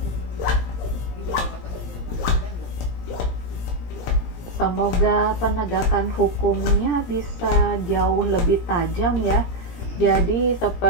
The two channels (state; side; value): late; right; 17 ms